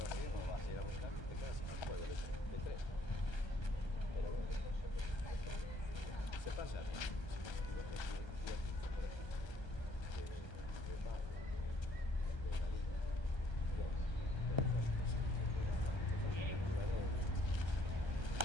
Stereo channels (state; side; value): late; right; 1.3 ms